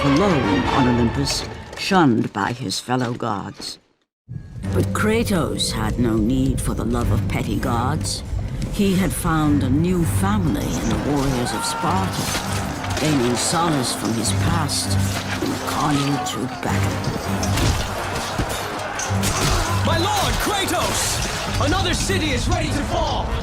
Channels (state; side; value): identical; both; correlation 1.00